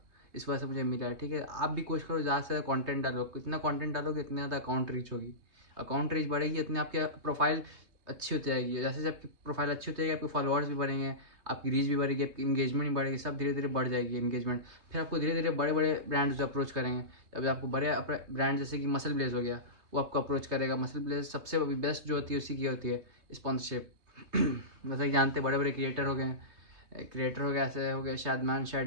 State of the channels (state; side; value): late; left; 3.2 ms